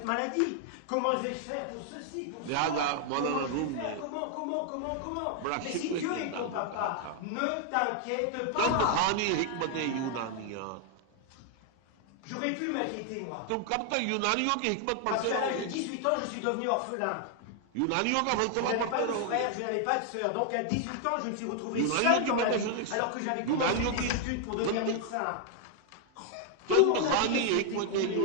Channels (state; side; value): different; both; correlation 0.00